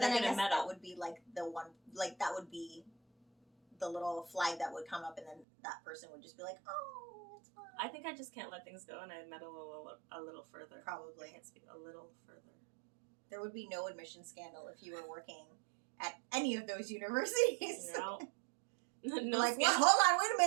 I guess that would be like the one, like that would be the little flag that would come up and then that person would just be like, oh, it's fine. I think I just can't let things go and I meddle a little further. Probably. I can't speak a little further. There would be no admission scandal if you were working at any of those universities. No. No like, well, hold on, wait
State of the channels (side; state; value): left; drops out; at 5.5 s